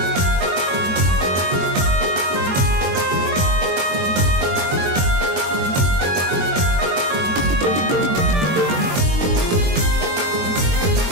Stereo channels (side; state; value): left; late; 22 ms